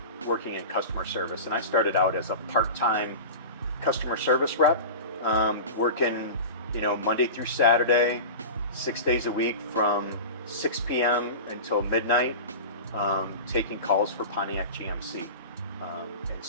working in customer service, and I started out as a part-time customer service rep, working Monday through Saturday, 6 days a week from 6 p.m. until midnight, taking calls for Pontiac GMC. And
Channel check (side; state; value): both; inverted; correlation -0.30